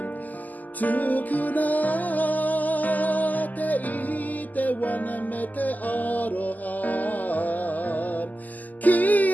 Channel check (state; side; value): late; right; 0.081 ms